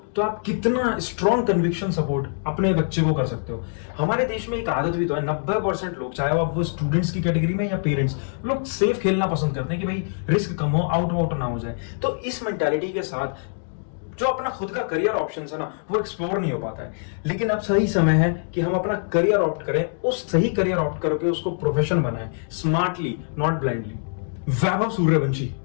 तो आप कितना स्ट्रॉन्ग कन्विक्शन सपोर्ट अपने बच्चे को कर सकते हो। हमारे देश में एक आदत भी तो है, 90% लोग, चाहे वो स्टूडेंट्स की कैटेगरी में या पेरेंट्स, लोग सेफ खेलना पसंद करते हैं कि भाई रिस्क कम हो, आउट ना हो जाए। तो इस मेंटालिटी के साथ जो अपना खुद का करियर ऑप्शन है ना, वो एक्सप्लोर नहीं हो पाता है। लेकिन अब सही समय है कि हम अपना करियर ऑप्ट करें, उस सही करियर ऑप्ट करके उसको प्रोफेशन बनाएं, smartly not blindly. Vaibhav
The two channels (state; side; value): silent; right; digital silence